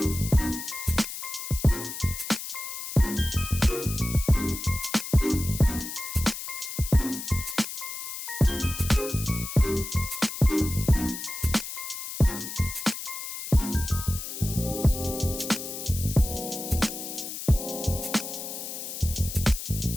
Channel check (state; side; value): noise; left; hiss, 7 dB below the sound